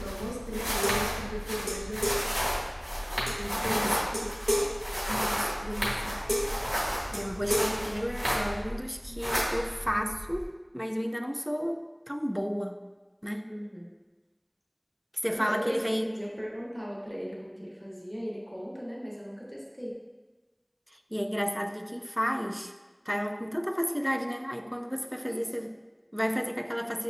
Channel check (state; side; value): identical; both; correlation 1.00